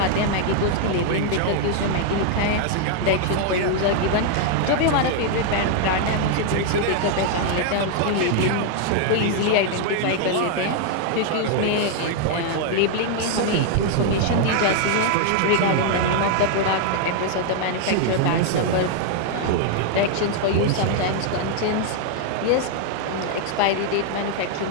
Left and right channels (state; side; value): different; both; correlation 0.00